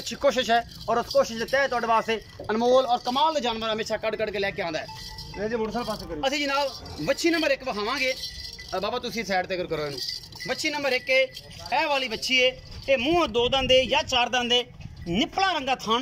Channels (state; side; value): identical; both; correlation 1.00